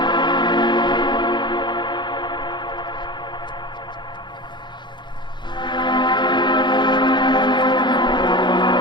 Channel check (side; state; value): right; late; 0.22 ms